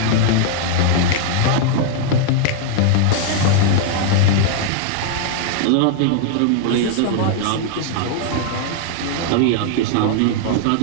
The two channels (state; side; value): different; both; correlation -0.01